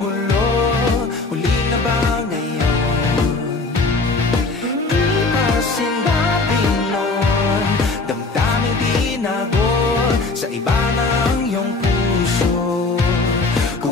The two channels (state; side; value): quieter; right; 3.7 dB